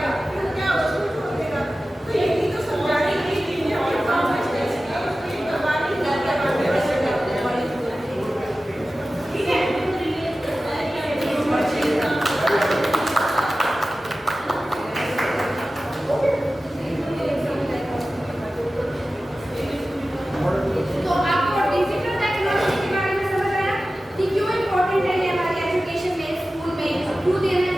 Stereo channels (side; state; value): both; normal; correlation 0.95